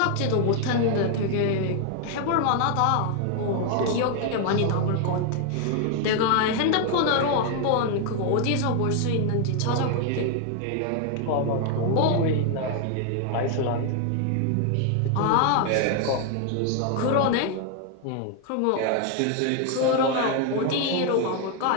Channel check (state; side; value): different; both; correlation 0.00